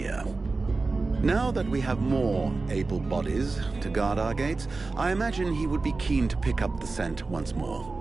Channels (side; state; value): left; quieter; 3.7 dB